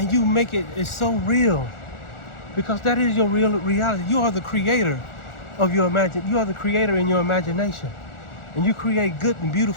you make it's so real, because that is your real reality. You are the creator of your you are the creator in your imagination, and you create good and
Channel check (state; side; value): late; right; 1.4 ms